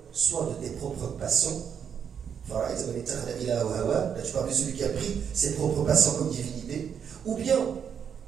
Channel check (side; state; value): left; quieter; 7.7 dB